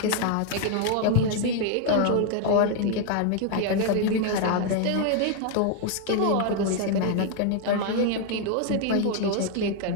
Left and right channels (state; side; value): different; both; correlation 0.00